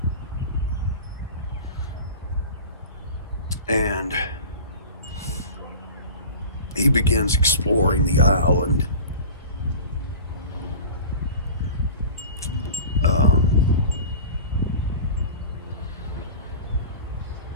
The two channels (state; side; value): inverted; both; correlation -0.35